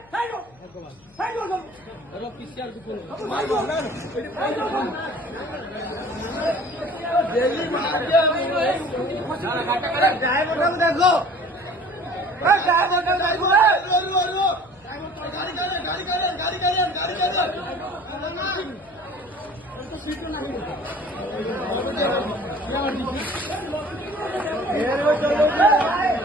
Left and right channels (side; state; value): left; noise; hum, 28 dB below the sound